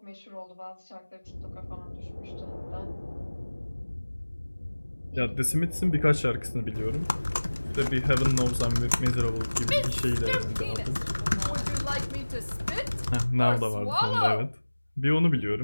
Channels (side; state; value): both; inverted; correlation -1.00